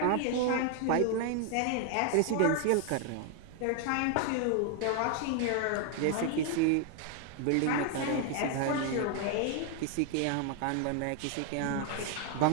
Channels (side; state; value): both; different; correlation 0.00